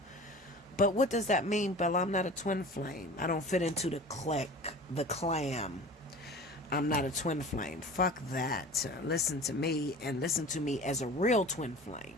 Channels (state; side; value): normal; both; correlation 0.39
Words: But what does that mean, Bella? I'm not a twin flame. I don't fit into the clique, the clan. I'm not a twin flame. Fuck that. Listen to me, and listen to me as a real twin flame.